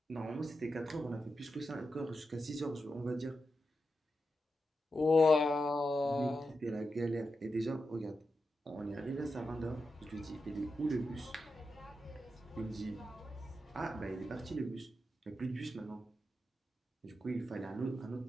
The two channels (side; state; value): both; normal; correlation 0.88